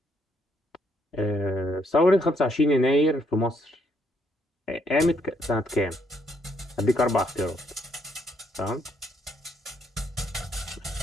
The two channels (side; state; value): both; normal; correlation 0.72